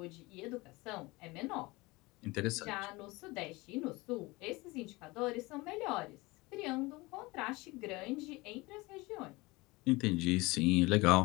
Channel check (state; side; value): quieter; right; 22.8 dB